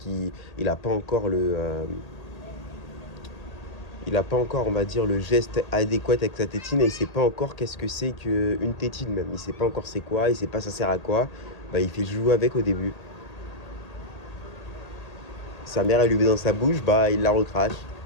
il a pas encore il a pas encore, on va dire, le geste adéquat avec sa tétine et il sait pas encore qu'est-ce que c'est qu'une tétine même. Il sait pas encore c'est quoi, il sait pas ça sert à quoi. Bah, il fait jouer avec au début. Sa mère, elle lui met dans sa bouche, bah, il la recrache.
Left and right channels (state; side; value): late; right; 1.8 ms